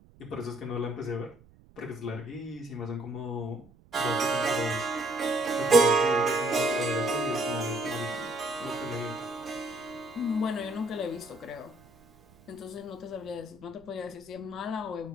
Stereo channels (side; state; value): right; noise; rumble, 26 dB below the sound